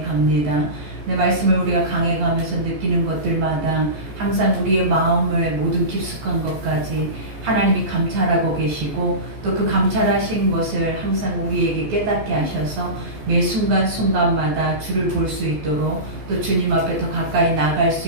갑니다. 내 말씀을 우리가 강해 가면서 느끼는 것들마다 항상 우리의 마음을 모든 깊숙한 것까지 하나님이 감찰하고 계시고 또 그 감찰하신 것을 항상 우리에게 깨닫게 하셔서 매 순간순간마다 주를 볼 수 있도록 또 주님 앞에 더 가까이 나갈 수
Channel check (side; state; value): left; late; 14 ms